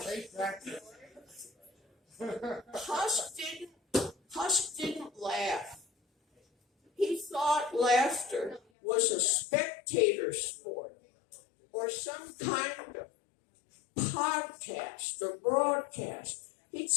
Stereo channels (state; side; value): drops out; right; at 8.6 s